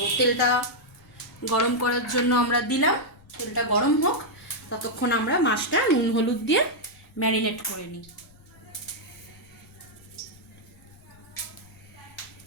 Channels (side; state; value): left; noise; rumble, 26 dB below the sound